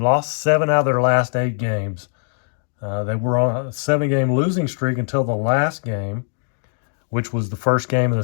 7 out of their last 8 games. They were on a 7-game losing streak until the last game, which was the first game of the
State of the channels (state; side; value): silent; right; 65 dB below the other